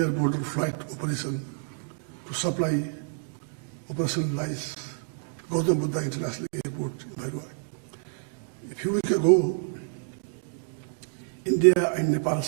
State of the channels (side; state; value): left; silent; digital silence